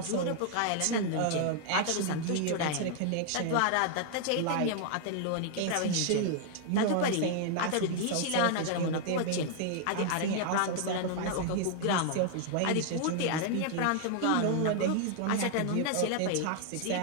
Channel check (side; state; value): both; different; correlation 0.00